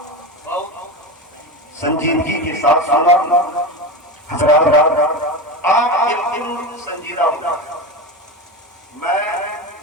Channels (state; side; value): normal; both; correlation 0.21